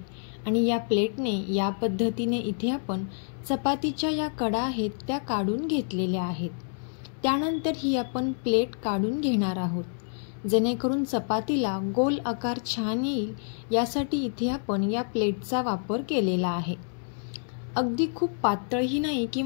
आणि या प्लेटने या पद्धतीने इथे आपण चपातीच्या या कडा आहेत त्या काढून घेतलेल्या आहेत। त्यानंतर ही आपण प्लेट काढून घेणार आहोत, जेणेकरून चपातीला गोल आकार छान येईल यासाठी इथे आपण या प्लेटचा वापर केलेला आहे। अगदी खूप पातळही नाही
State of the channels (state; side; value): silent; right; 59 dB below the other